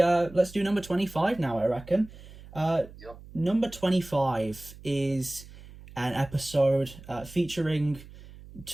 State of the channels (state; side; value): noise; right; hum, 18 dB below the sound